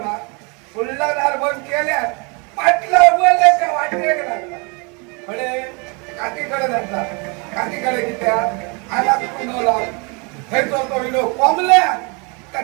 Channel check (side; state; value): left; quieter; 31.6 dB